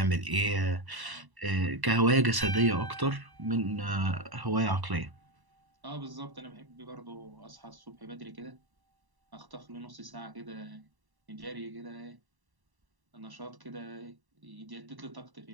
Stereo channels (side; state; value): left; late; 1.1 ms